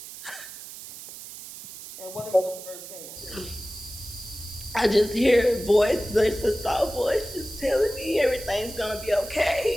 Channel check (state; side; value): noise; right; hiss, 13 dB below the sound